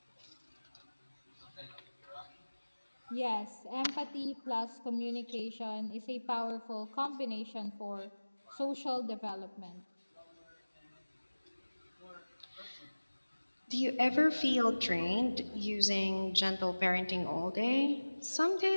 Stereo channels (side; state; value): both; inverted; correlation -1.00